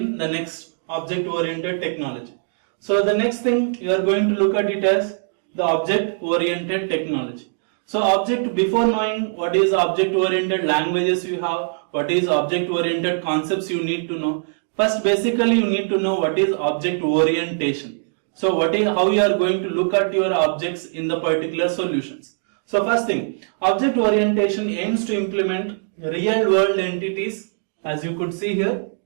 the next object-oriented technology. So the next thing you are going to look at it as the object-oriented technology. So before knowing what is object-oriented languages you have, what is object-oriented concepts you need to know. First, basically you need to know what is object orientation. So how you are going to look at your objects in the particular solutions. So first thing, object orientation aims to implement real world entities, as you could see here.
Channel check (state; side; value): silent; left; digital silence